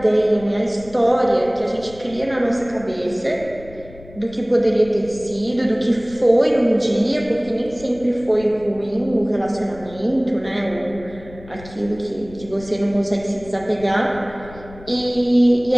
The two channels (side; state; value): left; noise; rumble, 19 dB below the sound